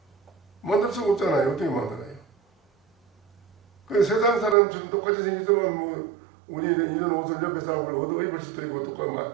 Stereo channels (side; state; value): left; drops out; at 4.5 s